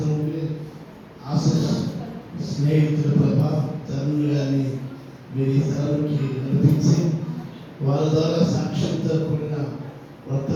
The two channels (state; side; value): identical; both; correlation 1.00